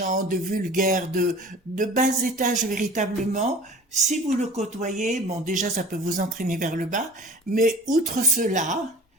de vulgaire, de bas étage véritablement. Si vous le côtoyez, bon déjà ça peut vous entraîner vers le bas, mais outre cela,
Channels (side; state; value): both; normal; correlation 0.42